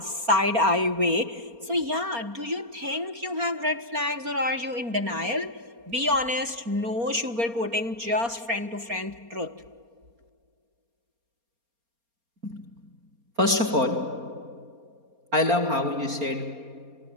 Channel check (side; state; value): left; late; 4.3 ms